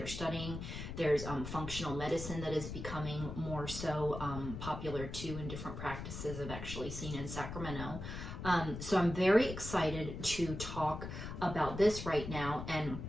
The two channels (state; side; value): noise; left; rumble, 7 dB below the sound